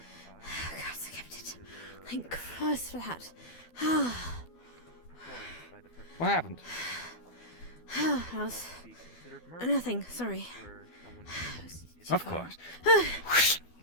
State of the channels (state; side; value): late; right; 12 ms